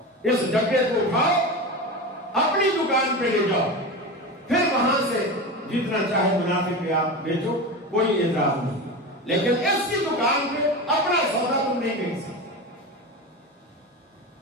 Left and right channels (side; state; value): both; normal; correlation 0.24